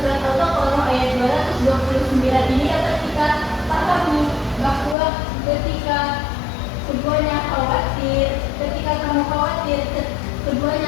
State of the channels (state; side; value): drops out; right; at 5.0 s